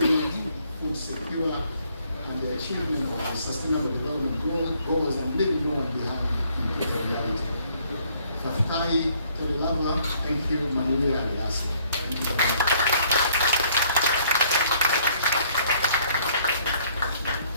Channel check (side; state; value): both; inverted; correlation -0.63